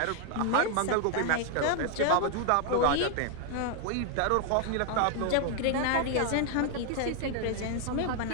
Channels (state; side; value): different; both; correlation 0.00